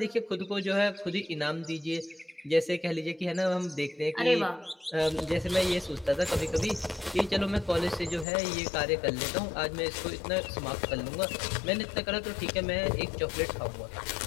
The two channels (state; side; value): drops out; right; at 8.2 s